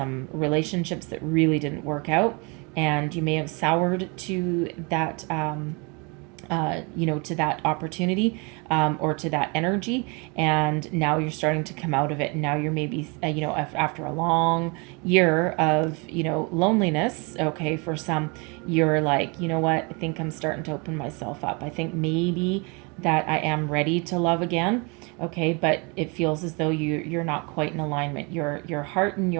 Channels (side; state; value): left; quieter; 30.6 dB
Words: relationships that really didn't work out, and you may have soured to that, to that opportunity, or to that energy, and now you're starting to come out of it. And now you're maybe, after a long year of, loneliness, okay, for some, you're like, you know what, I think I'm starting to open myself up. I think maybe that I am ready to love again. Okay, but it feels as though you're not quite in alignment. Your heart and